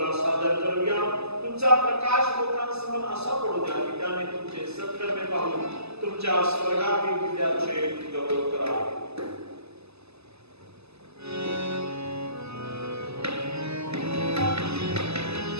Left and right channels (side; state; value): left; late; 0.79 ms